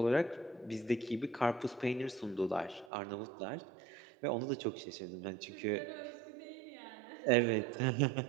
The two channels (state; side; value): drops out; left; at 2.9 s